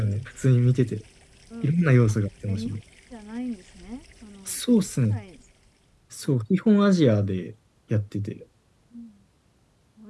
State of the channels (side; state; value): both; identical; correlation 1.00